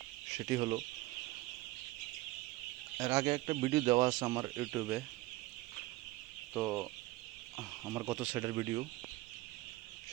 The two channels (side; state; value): left; quieter; 19.3 dB